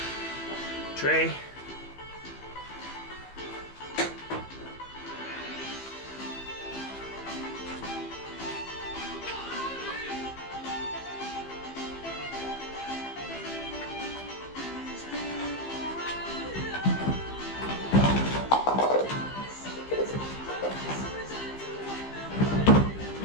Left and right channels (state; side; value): late; right; 15 ms